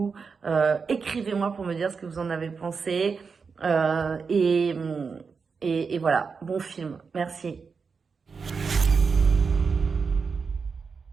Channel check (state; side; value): quieter; left; 5.3 dB